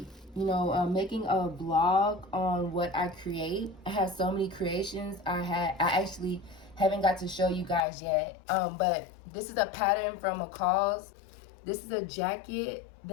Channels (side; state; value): right; drops out; at 7.9 s